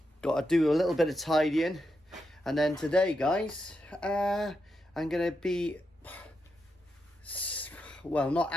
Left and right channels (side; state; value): both; normal; correlation 0.85